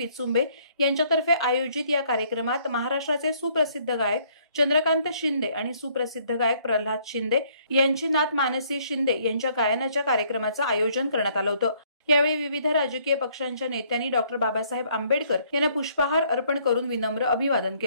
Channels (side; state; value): both; inverted; correlation -0.64